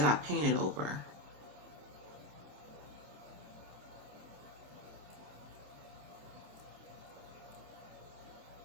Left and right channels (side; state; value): left; late; 27 ms